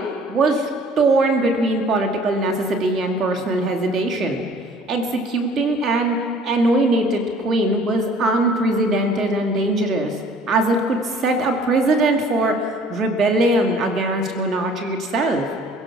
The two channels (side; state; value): both; normal; correlation 0.52